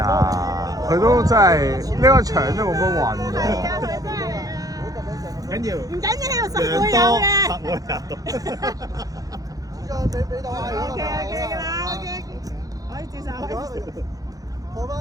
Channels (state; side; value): late; left; 0.17 ms